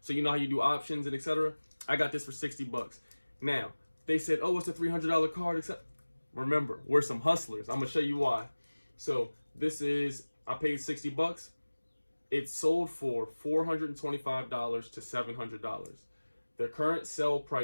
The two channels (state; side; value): inverted; both; correlation -1.00